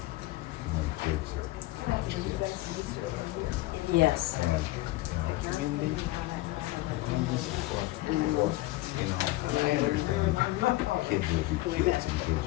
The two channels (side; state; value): right; quieter; 18.5 dB